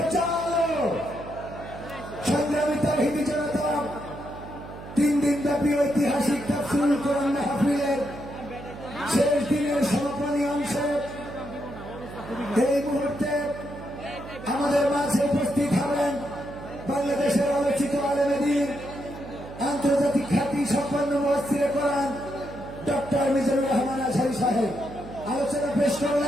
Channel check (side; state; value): right; noise; hum, 13 dB below the sound